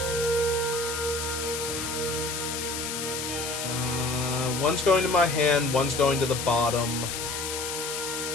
One's going to my hand, one's going to the bottom.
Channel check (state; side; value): noise; left; hiss, 4 dB below the sound